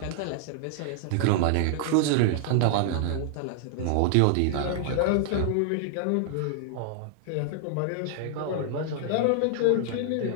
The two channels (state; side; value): different; both; correlation 0.00